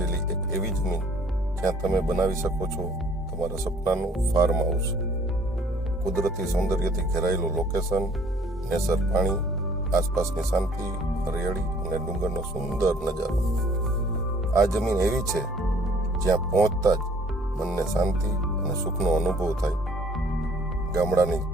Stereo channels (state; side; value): normal; both; correlation 0.57